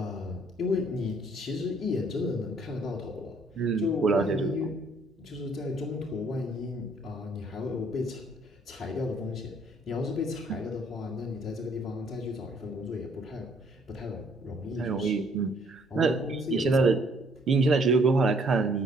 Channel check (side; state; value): both; normal; correlation 0.64